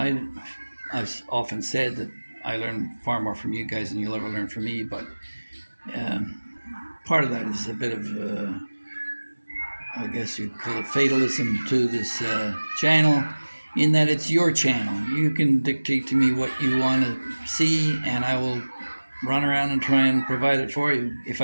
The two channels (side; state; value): both; inverted; correlation -1.00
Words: I've often said that I learn far more from you guys than you'll ever learn from me, but part of that is a bit of, I guess you'd call it fatalism to this channel, in that it's your channel. You can dictate to me what you want to see, and I will run around and try and provide it for you if